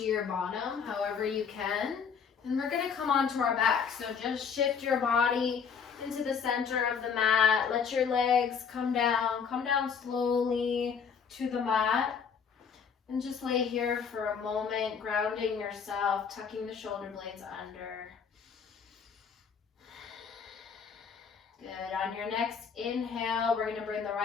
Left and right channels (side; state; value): right; quieter; 6.6 dB